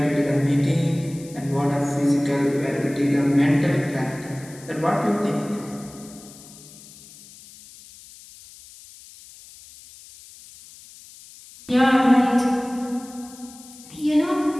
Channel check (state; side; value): noise; left; hiss, 20 dB below the sound